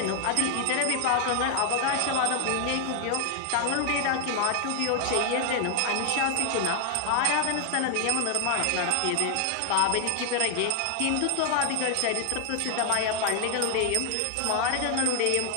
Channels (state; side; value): different; both; correlation 0.00